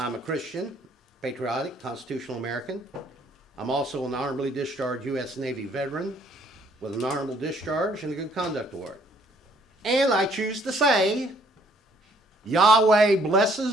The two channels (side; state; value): both; normal; correlation 0.63